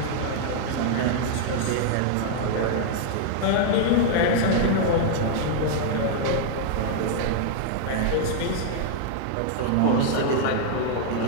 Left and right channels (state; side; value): different; both; correlation -0.01